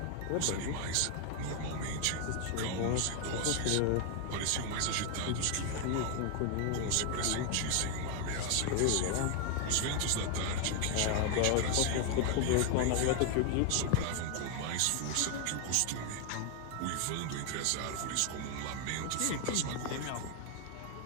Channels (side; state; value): both; different; correlation 0.00